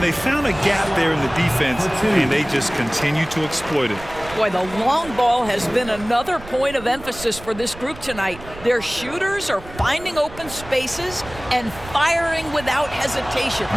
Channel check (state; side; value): noise; right; rumble, 16 dB below the sound